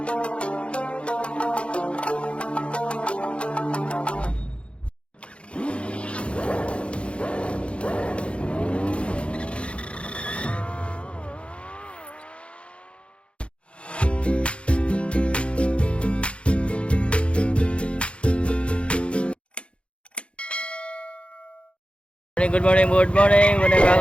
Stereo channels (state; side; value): late; right; 0.059 ms